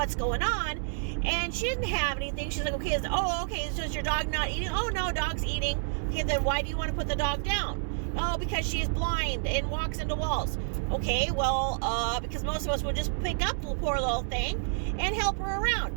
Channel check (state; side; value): silent; left; 58 dB below the other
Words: going on? And she didn't have anything. She's like, okay, so is your dog not eating? Oh, no, dog's eating. Okay, then why do you want to put the dog down? Oh, because she's blind and walks into walls. Okay, well, because most of us would just pick up the poor little thing and help her